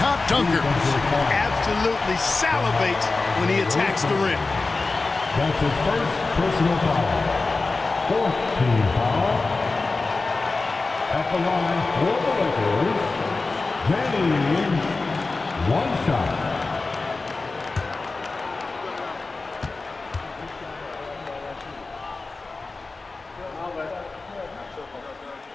dunkers. Absolutely salivates when he attacks the rim. That's his first personal foul. Fourth team foul. At the line for the Lakers, James. 1 shot.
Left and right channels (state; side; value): quieter; right; 3.7 dB